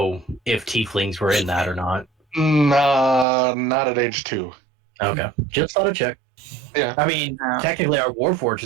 if tieflings were in that or not. Nah, not at age 2. Okay, just thought I'd check. Yeah. I mean, technically, our Warforged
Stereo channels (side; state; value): left; drops out; at 3.2 s